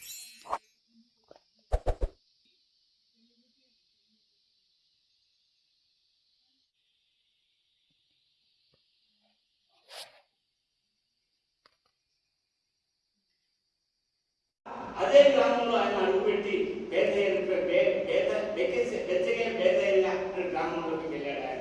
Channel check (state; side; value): identical; both; correlation 1.00